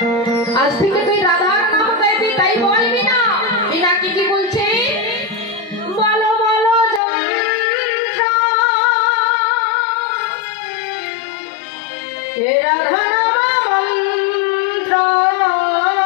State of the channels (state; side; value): drops out; right; at 7.0 s